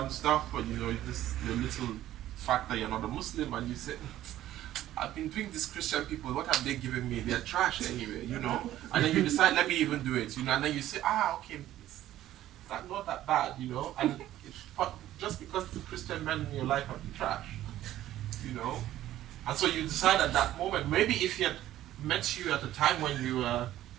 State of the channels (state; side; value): quieter; left; 13.5 dB